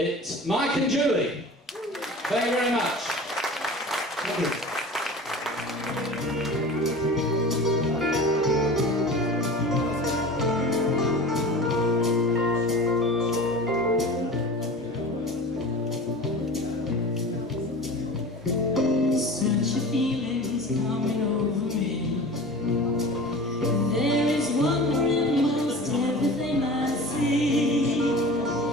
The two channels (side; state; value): both; normal; correlation 0.36